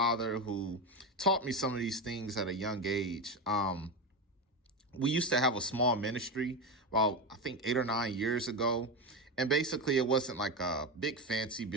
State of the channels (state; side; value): normal; both; correlation 0.16